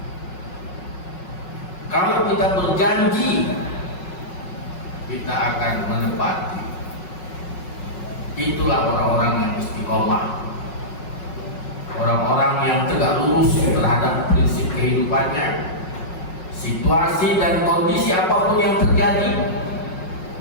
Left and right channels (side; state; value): right; late; 5.4 ms